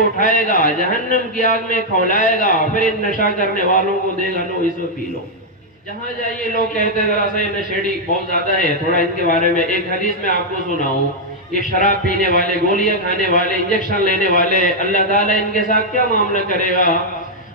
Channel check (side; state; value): both; normal; correlation -0.03